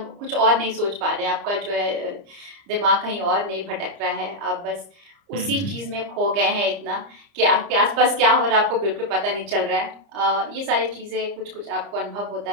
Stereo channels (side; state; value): left; late; 30 ms